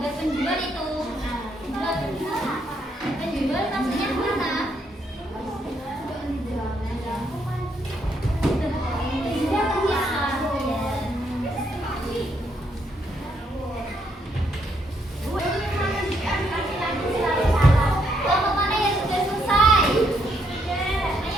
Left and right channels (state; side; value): normal; both; correlation 0.74